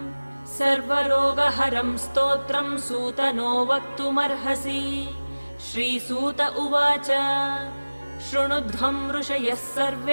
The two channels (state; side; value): inverted; both; correlation -1.00